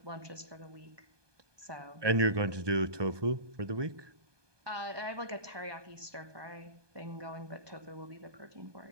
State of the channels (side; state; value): left; late; 1.2 ms